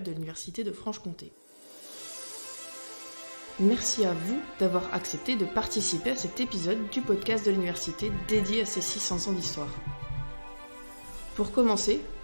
de l'Université de Franche-Comté. Merci à vous d'avoir accepté de participer à cet épisode du podcast de l'université dédié à ces 600 ans d'histoire. Pour commencer,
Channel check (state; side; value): inverted; both; correlation -1.00